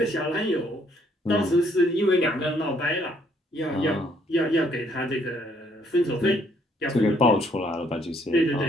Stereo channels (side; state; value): both; normal; correlation 0.67